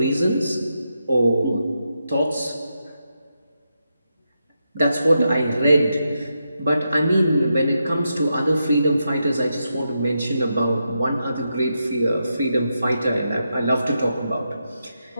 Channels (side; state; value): both; inverted; correlation -0.85